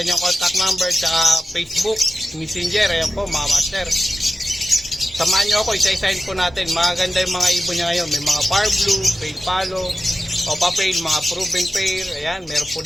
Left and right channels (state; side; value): normal; both; correlation 0.93